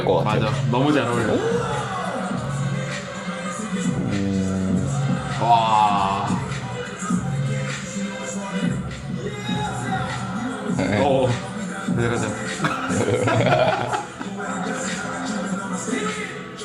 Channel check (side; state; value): both; identical; correlation 1.00